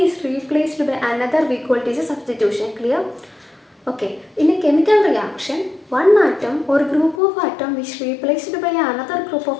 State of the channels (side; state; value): right; drops out; at 7.2 s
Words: is replaced by another, we call it as a substitution. Clear? Okay, in a chemical reaction, one atom or group of atom which replaced by another group